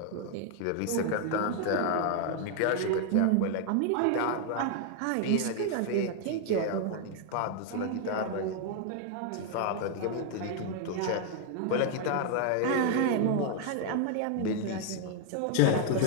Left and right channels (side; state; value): both; different; correlation 0.00